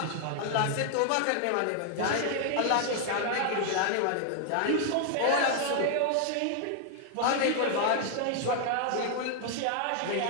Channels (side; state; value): both; different; correlation 0.00